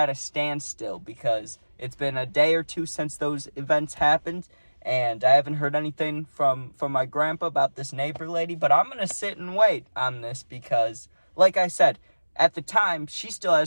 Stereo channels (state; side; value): inverted; both; correlation -1.00